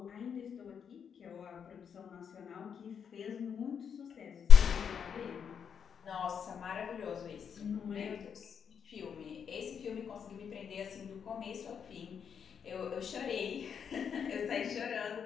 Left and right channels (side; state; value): right; quieter; 7.4 dB